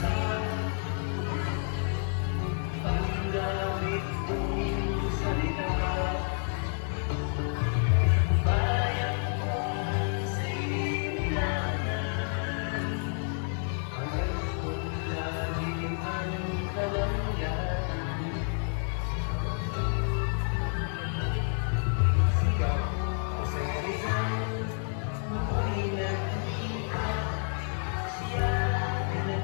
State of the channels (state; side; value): silent; right; 58 dB below the other